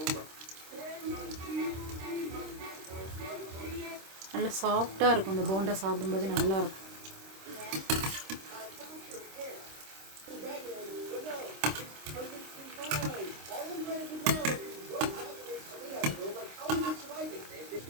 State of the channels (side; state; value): left; late; 26 ms